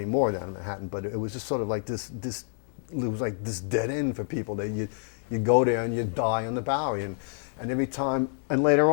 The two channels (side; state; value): right; silent; 59 dB below the other